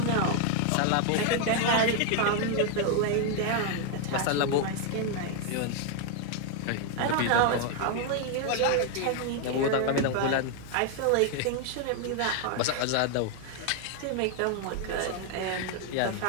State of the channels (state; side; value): different; both; correlation 0.01